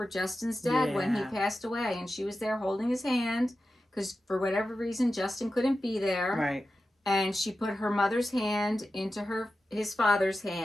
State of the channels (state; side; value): normal; both; correlation 0.92